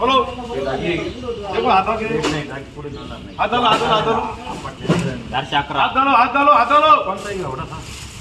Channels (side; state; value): both; identical; correlation 1.00